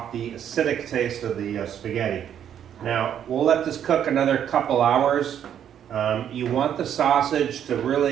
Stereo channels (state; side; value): quieter; left; 9.5 dB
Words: the acidic taste of the spaghetti. Now, we'll let this cook another couple hours. You want the sausage to